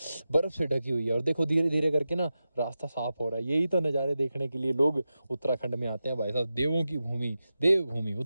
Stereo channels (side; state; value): both; inverted; correlation -0.92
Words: बर्फ़ से ढकी हुई है। और देखो धीरे धीरे करके ना रास्ता साफ हो रहा है। यही तो नज़ारे देखने के लिए लोग उत्तराखंड में आते हैं भाई साहब। देवों की भूमि, देवभूमि